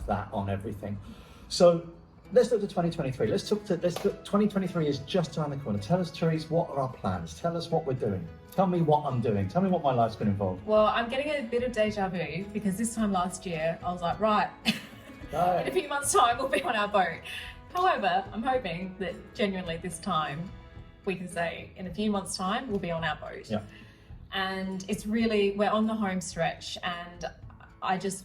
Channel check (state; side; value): identical; both; correlation 1.00